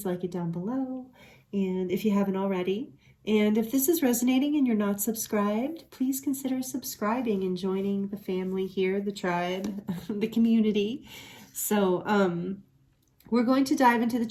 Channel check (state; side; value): identical; both; correlation 1.00